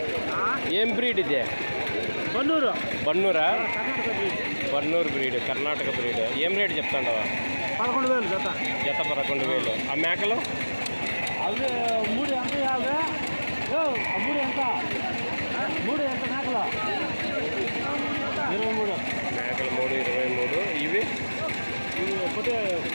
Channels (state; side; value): inverted; both; correlation -1.00